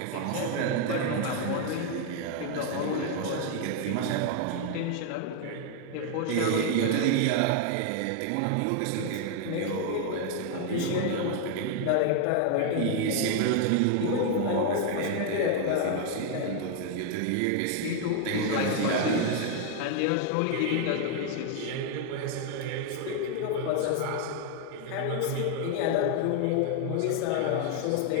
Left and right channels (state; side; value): different; both; correlation 0.00